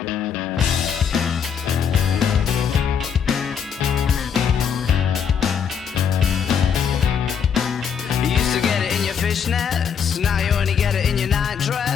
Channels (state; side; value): quieter; right; 7.2 dB